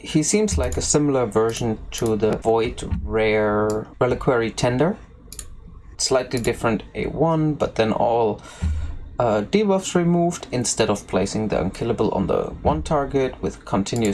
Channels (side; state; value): both; identical; correlation 1.00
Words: seems like a similar version to the Void Rare Reliquary Tender. Slightly different A1, but then all debuffs removed. Instead of placing the unkillable on the one target with